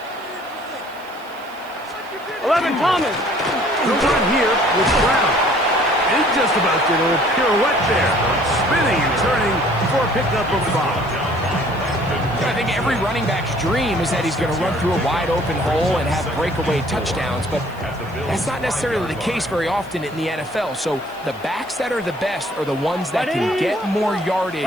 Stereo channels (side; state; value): right; noise; hiss, 26 dB below the sound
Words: 11, Thomas. The run here with Brown. He just about did a little pirouette there, spinning and turning for a pickup of 5. I think every running back's dream is that he's going to run through a wide open hole and have breakaway touchdowns, but that's not necessarily the case very often in the NFL. So the backs that are the best are the ones that can get more